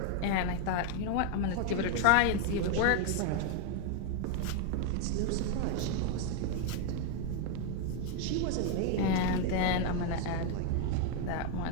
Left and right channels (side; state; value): both; different; correlation 0.00